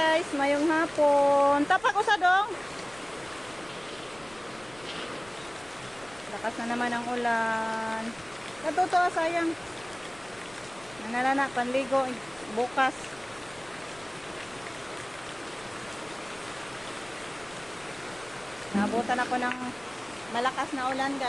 mayong hapon. Tapak usa dong. Lakas na naman ang ulan. Natuto sayang. Nanalana panligo bukas. Nabutan ako ng malakas na ulan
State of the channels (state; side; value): noise; left; rumble, 23 dB below the sound